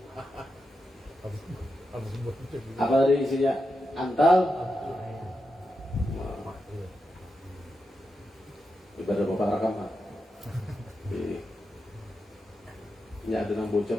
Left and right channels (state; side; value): normal; both; correlation 0.88